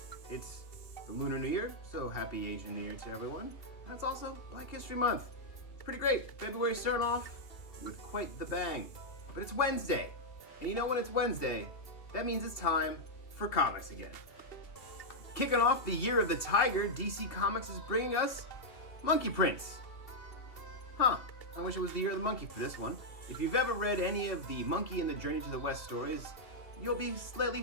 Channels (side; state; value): right; late; 2.7 ms